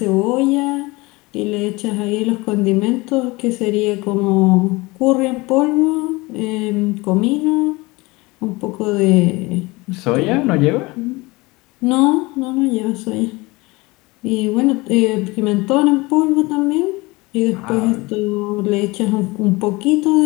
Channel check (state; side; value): quieter; right; 23.2 dB